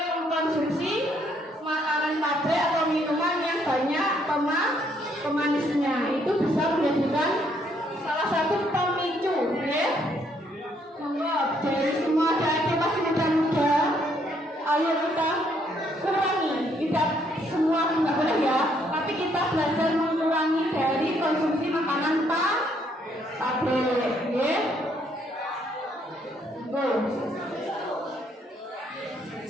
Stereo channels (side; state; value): both; normal; correlation 0.70